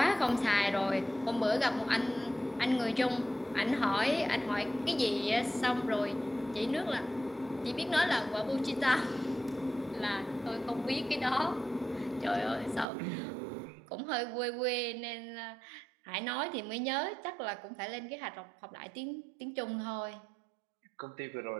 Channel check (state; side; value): drops out; left; at 12.9 s